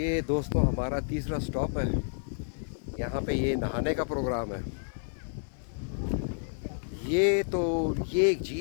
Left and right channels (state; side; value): silent; right; 55 dB below the other